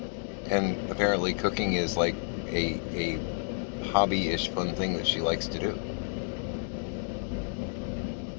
And apparently cooking is like a hobby-ish fun thing that she likes to do.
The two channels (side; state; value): right; silent; digital silence